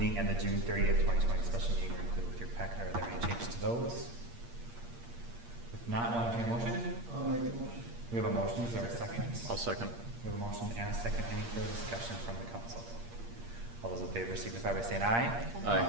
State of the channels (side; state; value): left; late; 8.6 ms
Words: and the June 30th, 2020 special meeting are included with your packet. Are there any changes to those? If not, we'll entertain a motion. We have a motion, is there a second? I'll second. We have a motion and a second. Any further discussion from the council? All those in favor signify by saying aye.